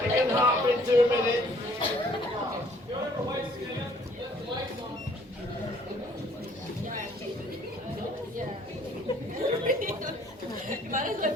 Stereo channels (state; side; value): normal; both; correlation 0.60